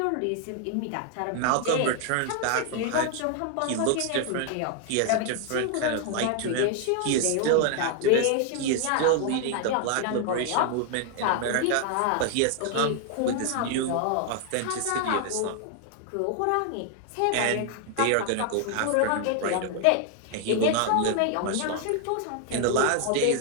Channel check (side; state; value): both; different; correlation 0.00